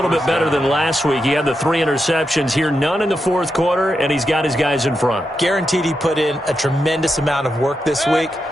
bit better than last week. He had the 3 interceptions here, none in the fourth quarter, and he's got his guys in front. Guaranteed he put in a tremendous amount of work this week,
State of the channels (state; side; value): normal; both; correlation 0.86